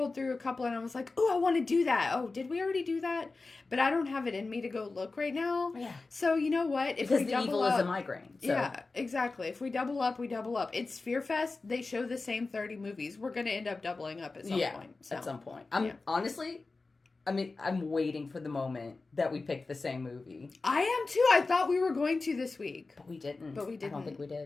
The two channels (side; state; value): right; quieter; 3.7 dB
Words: through a couple and I was like, oh, I want to do that. Oh, did we already do that? But I don't have it in me to go look right now. Yeah. So, you know what? Because the evil is a migraine. So. Yeah, exactly. If we double up, we double up. It's FearFest. They show the same 30 movies. We're going to end up doubling up at some point. So. At some point. Honestly... I'm waiting for the moment that we pick the same movie. I am too. I thought we were going to this week. But we didn't. I don't think we